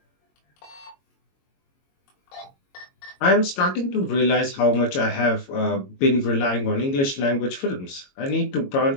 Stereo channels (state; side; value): late; right; 22 ms